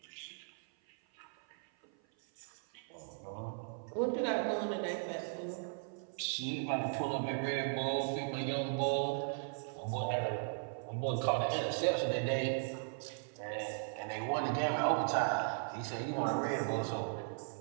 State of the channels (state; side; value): silent; left; 53 dB below the other